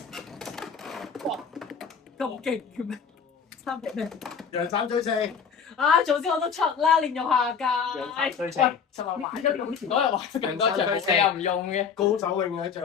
哇！咁勁嘅咩？3咩？楊三追四。啊！早知我都出啦，練用下楊三屆。追四。就話玩咗用前嗰日玩咁多場，你又唔用嘅。高手永遠喺最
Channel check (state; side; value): quieter; right; 6.6 dB